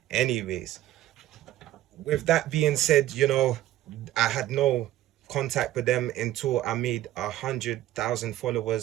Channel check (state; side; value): quieter; left; 14.1 dB